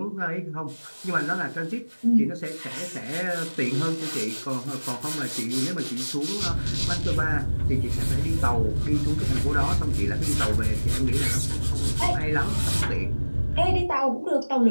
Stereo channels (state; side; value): inverted; both; correlation -1.00